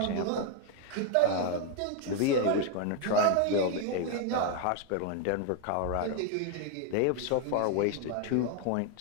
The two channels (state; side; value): different; both; correlation 0.01